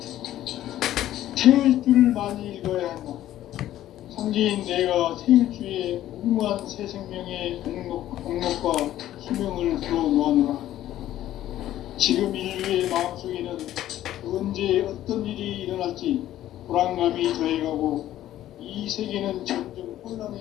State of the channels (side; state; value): right; quieter; 13.1 dB